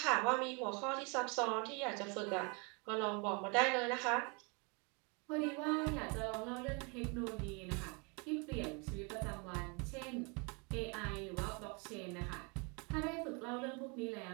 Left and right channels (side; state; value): left; quieter; 32.4 dB